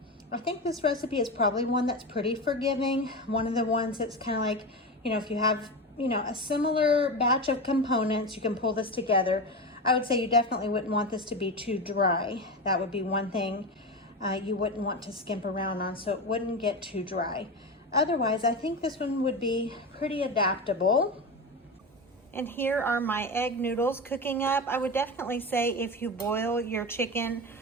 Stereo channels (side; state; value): both; normal; correlation 0.21